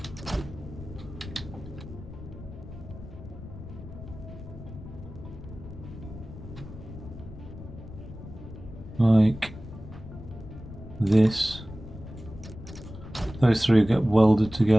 Like this, those 3 get welded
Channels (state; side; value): noise; left; rumble, 13 dB below the sound